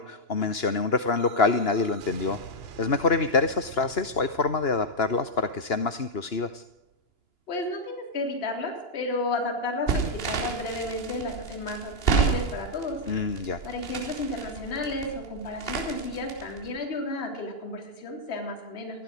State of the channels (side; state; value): right; late; 2.9 ms